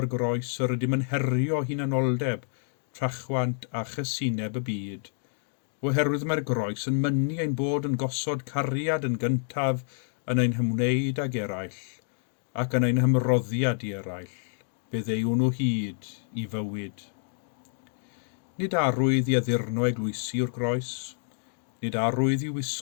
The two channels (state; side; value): silent; right; digital silence